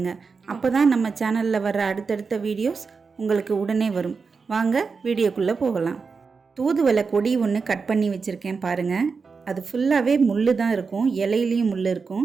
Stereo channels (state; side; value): quieter; left; 5.0 dB